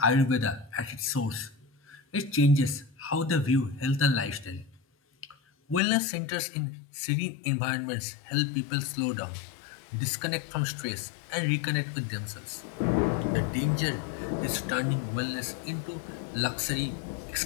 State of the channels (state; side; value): drops out; right; at 5.8 s